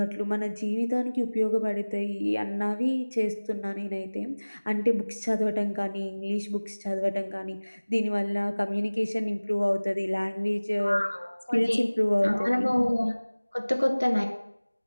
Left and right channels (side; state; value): both; inverted; correlation -1.00